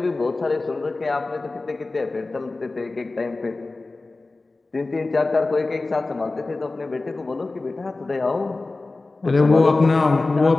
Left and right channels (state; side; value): quieter; right; 3.3 dB